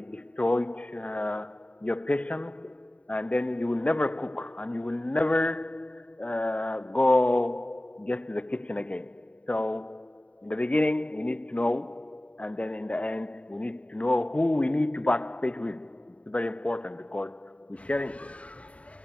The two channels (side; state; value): right; late; 0.065 ms